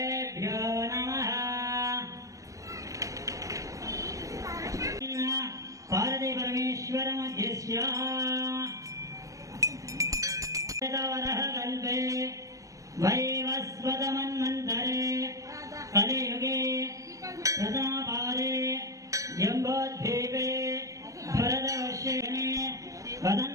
నమః. పార్వతీ పరమేశ్వర మధ్యస్య కల్పే వైవస్వతమన్వంతరే కలియుగే ప్రథమపాదే జంబోద్వీపే భరతవర్షేణే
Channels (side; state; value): left; late; 0.16 ms